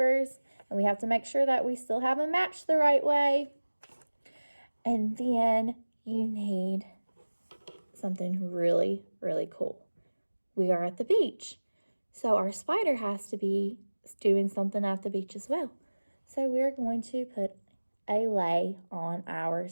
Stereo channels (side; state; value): both; inverted; correlation -1.00